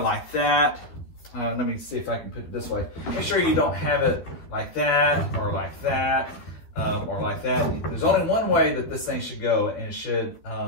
like that. Let me see if I can put it this way. Make sure you don't have it like that or like that or like that. There's only one way that this thing should go, and it should,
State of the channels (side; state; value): right; late; 12 ms